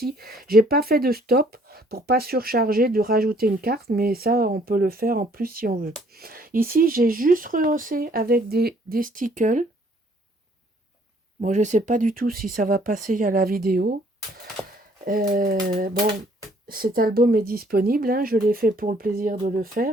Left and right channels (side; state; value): both; normal; correlation 0.62